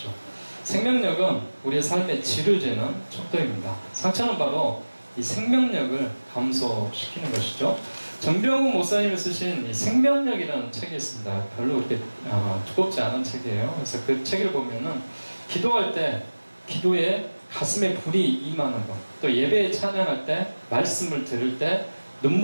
생명력은 우리의 삶의 질을 재는 척도입니다. 상처는 바로 이 생명력을 감소시키는 것이죠. 정병훈 목사님이 쓰신 이 생명력이라는 책이 있습니다. 별로 그렇게 두껍지 않은 책이에요. 그래서 그 책을 보면은 기도할 때 기도에 가슴에 불이 임하는 것, 또 예배에 찬양할 때 말씀을 들을 때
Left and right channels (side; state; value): both; inverted; correlation -1.00